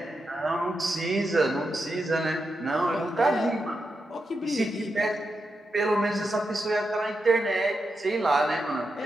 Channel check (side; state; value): both; normal; correlation 0.87